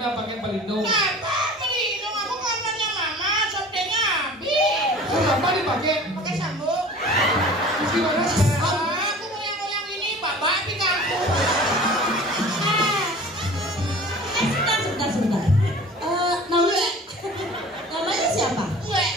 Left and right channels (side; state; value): both; normal; correlation 0.43